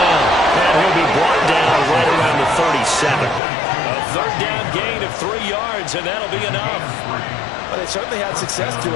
And he'll be brought down right around the 37. A 3rd down gain of 3 yards, and that'll be enough. Well, they certainly had success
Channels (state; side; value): drops out; right; at 3.4 s